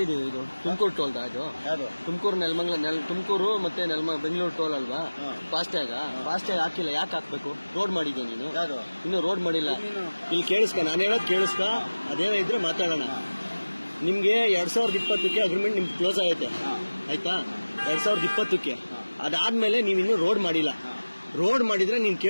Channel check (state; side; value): inverted; both; correlation -1.00